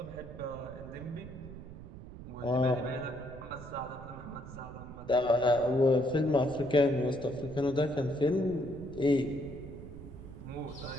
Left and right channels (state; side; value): noise; right; rumble, 13 dB below the sound